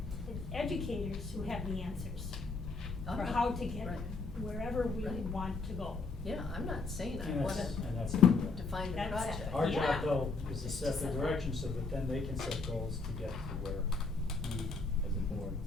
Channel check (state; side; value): quieter; right; 4.0 dB